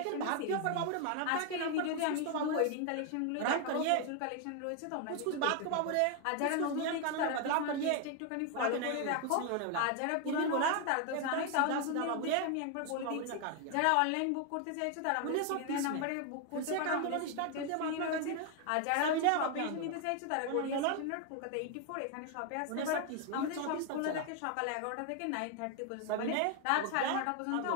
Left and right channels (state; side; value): different; both; correlation 0.01